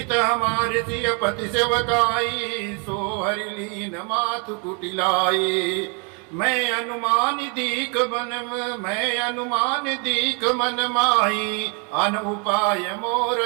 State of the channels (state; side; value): quieter; left; 36.2 dB